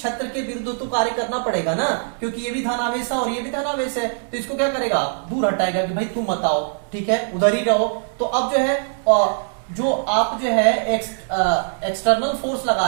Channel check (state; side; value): silent; left; digital silence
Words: के विरुद्ध तो कार्य करना पड़ेगा ना, क्योंकि ये भी धनावेश है और ये भी धनावेश है, तो इसको क्या करेगा, दूर हटाएगा कि भाई तुम मत आओ। ठीक है, उधर ही रहो। तो अब जो है जो आप जो है एक्सटर्नल फोर्स